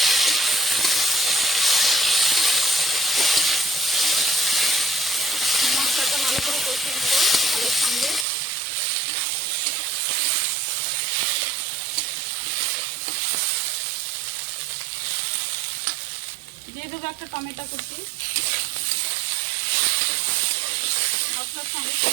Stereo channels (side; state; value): left; drops out; at 8.2 s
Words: মশলাটা ভালো করে কষিয়ে নেবো আলুর সঙ্গে। দিয়ে দেবো একটা টমেটো কুচি, মশলার সঙ্গে